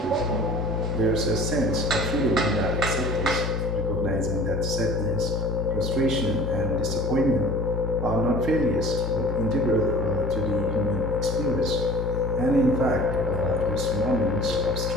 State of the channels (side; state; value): both; normal; correlation 0.44